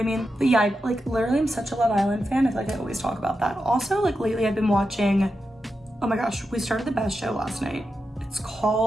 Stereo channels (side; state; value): both; normal; correlation 0.89